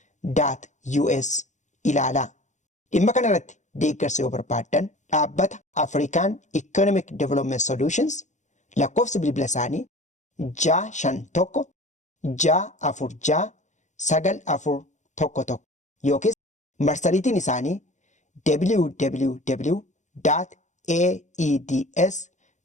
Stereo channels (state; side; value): late; right; 0.35 ms